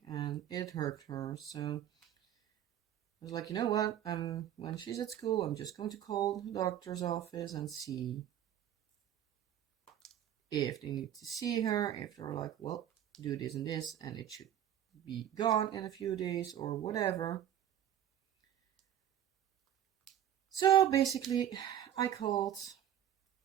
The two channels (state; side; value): quieter; left; 10.7 dB